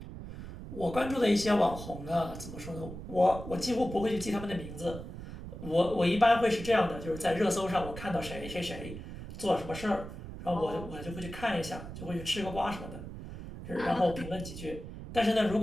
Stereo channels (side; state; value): right; noise; rumble, 11 dB below the sound